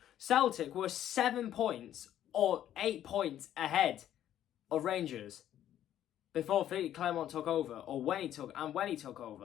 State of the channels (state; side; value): quieter; right; 11.4 dB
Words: Celtic were 7 points or 8 points ahead of Rangers before Philly Clermont took over, or when he took